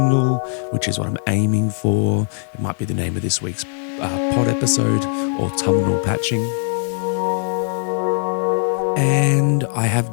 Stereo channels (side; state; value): right; silent; 66 dB below the other